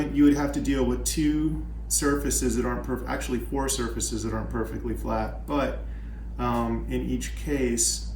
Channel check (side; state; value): both; identical; correlation 1.00